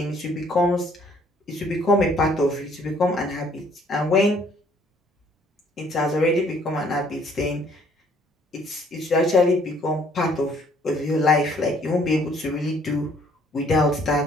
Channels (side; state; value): both; normal; correlation 0.61